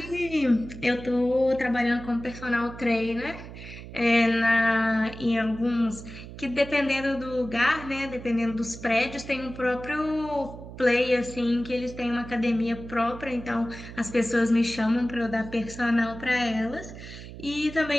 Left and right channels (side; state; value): right; noise; hum, 13 dB below the sound